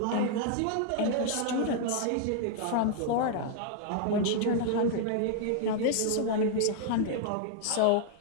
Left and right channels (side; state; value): both; different; correlation 0.00